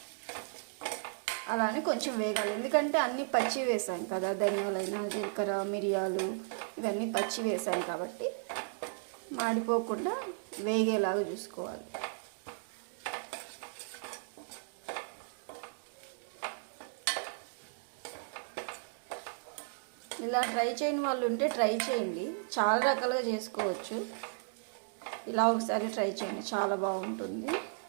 అలానే కొంచెం వేగాలి, ఎందుకంటే అన్నీ పచ్చి వేసాం కదా, ధనియాలైనా జీలకర్ర మిరియాలు ఇవన్నీ పచ్చి వేసాం కాబట్టి మాడిపోకుండా వేగేలాగా చూసుకోవాలి. ఇలా ట్రై చేయని వాళ్ళు ఉంటే ట్రై చేయండి, చాలా రకాలుగా చేసుకోవచ్చు. ఇలా ఒకసారి ట్రై చేయండి, చాలా బాగుంటుంది.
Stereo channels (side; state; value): left; silent; digital silence